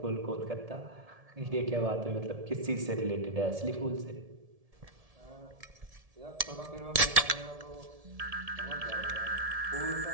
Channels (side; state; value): left; late; 1.7 ms